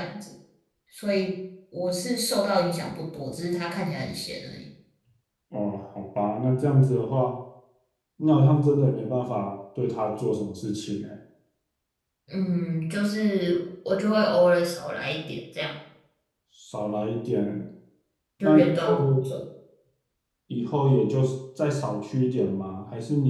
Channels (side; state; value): both; identical; correlation 1.00